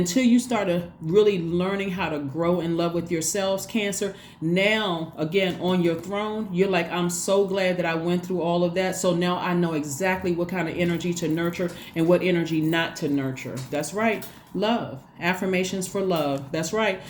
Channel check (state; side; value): identical; both; correlation 1.00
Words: you started really learning how to grow in love with yourselves, Cancer. Now, again, on your throne, you're like, I'm so glad that I went through all of that. So now I know exactly what kind of energy to nurture and what energy not to nurture. That's right. Love. Affirmations for love. That's right.